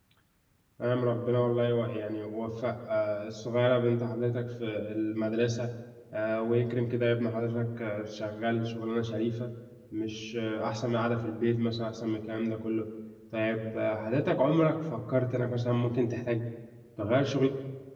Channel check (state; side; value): identical; both; correlation 1.00